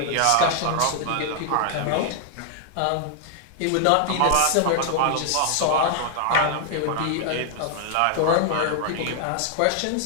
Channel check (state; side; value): different; both; correlation 0.00